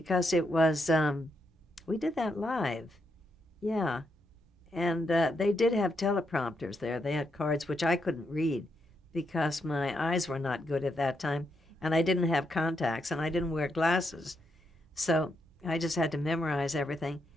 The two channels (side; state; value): both; normal; correlation 0.81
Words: it was, we did that live. Yeah. And they did have teleprompters there. They had cards which I couldn't read because my eyes were not good at that time, and I didn't have contacts, and I didn't wear glasses. So I just had to memorize everything.